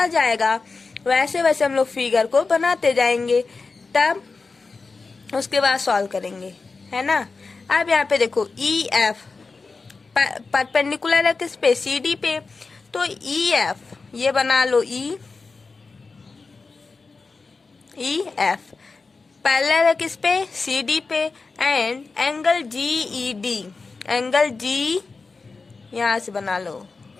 जाएगा वैसे वैसे हम लोग फिगर को बनाते जाएंगे, तब उसके बाद सॉल्व करेंगे, है ना। अब यहाँ पे देखो EF परपेंडिकुलर है किस पे, CD पे, तो EF ये बना लो, EF पैरेलल है किस पे, CD पे, and angle GED, angle G यहाँ से बना लो,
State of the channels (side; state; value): right; quieter; 4.2 dB